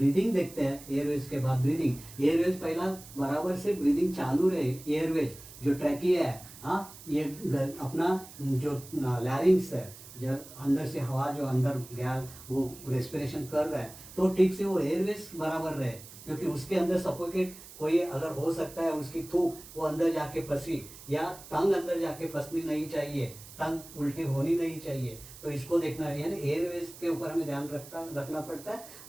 देखते हैं, एयरवेज के बाद ब्रीदिंग, एयरवेज पहला बराबर से ब्रीदिंग चालू रहे, एयरवेज जो ट्रैकिया है, हाँ, ये अपना जो लैरिंग्स है, जो अंदर से हवा जो अंदर गया वो रेस्पिरेशन कर रहा है, तो ठीक से वो एयरवेज बराबर रहे, क्योंकि उसके अंदर सफोकेट कोई अगर हो सकता है, उसकी थूक वो अंदर जाके फंसी, या टंग अंदर जाके फंसनी नहीं चाहिए, टंग उल्टी होनी नहीं चाहिए, तो इसको देखना है, यानी एयरवेज के ऊपर हमें ध्यान रखना पड़ता है।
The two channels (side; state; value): right; noise; hiss, 17 dB below the sound